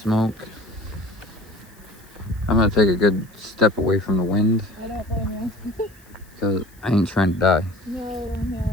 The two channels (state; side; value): noise; left; hiss, 28 dB below the sound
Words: I'm gonna take a good step away from the wind. I don't blame you. Because I ain't trying to die. No, I don't inhale